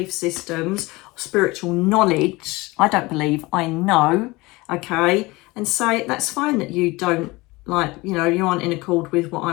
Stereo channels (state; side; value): quieter; right; 22.3 dB